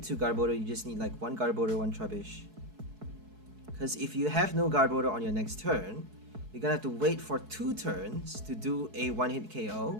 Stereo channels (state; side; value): late; left; 4.7 ms